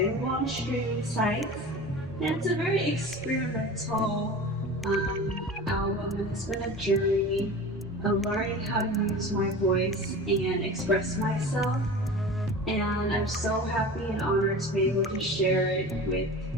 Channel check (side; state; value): both; normal; correlation 0.35